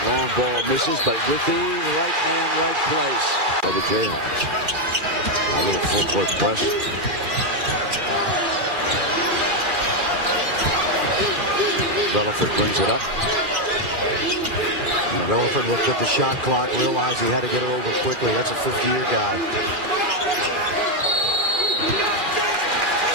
long ball misses, but with the right man, right place by the Jayhawks. A little full court press. Relaford brings it up. And Relaford looked at the shot clock, realized he had to get it over quickly. That's a 50-year guy.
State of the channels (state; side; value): late; left; 2.3 ms